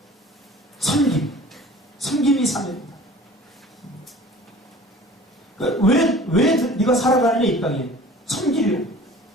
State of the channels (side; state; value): both; normal; correlation 0.45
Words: 섬김이 사명이다. 그러니까 왜 네가 살아가느냐 이 땅에? 섬기려.